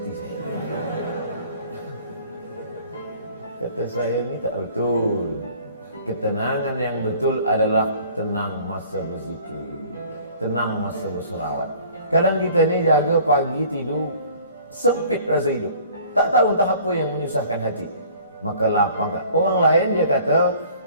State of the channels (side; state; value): both; inverted; correlation -0.51